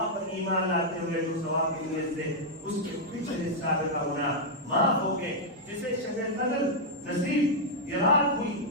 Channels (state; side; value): normal; both; correlation -0.04